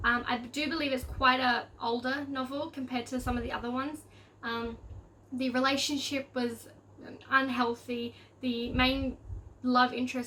I do believe it's quite a older novel compared to some of the other ones. The relationship was unhealthy. The main love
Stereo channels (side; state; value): both; identical; correlation 1.00